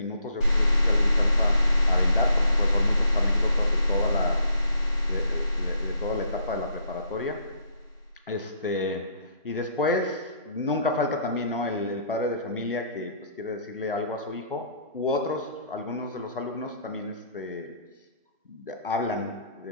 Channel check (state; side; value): inverted; both; correlation -0.66